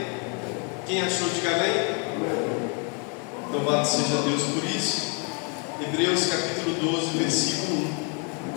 Quem achou, diga amém. Louvado seja Deus por isso. Hebreus capítulo 12, versículo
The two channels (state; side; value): quieter; right; 36.3 dB